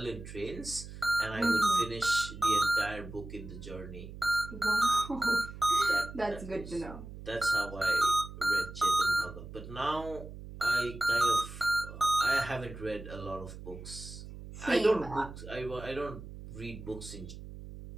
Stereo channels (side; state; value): right; noise; hum, 13 dB below the sound